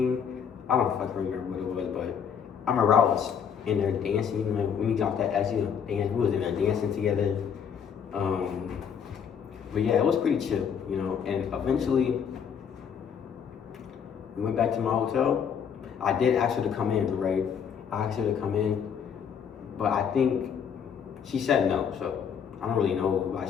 I don't fucking remember what it was, but I remember I was in there dancing. You know, when we got that actually dance, we was in there dancing together. But yeah, it was pretty chill, you know. And eventually, we went back to my hotel. I did ask her to come in, right? I asked her to come in, but I think she said no. So I don't really know why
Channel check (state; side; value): quieter; right; 7.5 dB